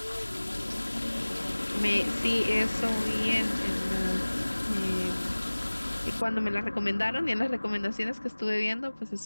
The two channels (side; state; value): both; inverted; correlation -1.00